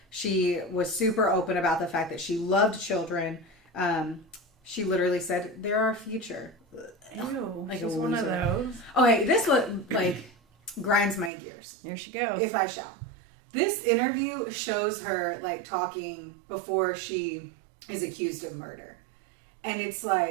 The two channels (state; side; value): drops out; left; at 11.3 s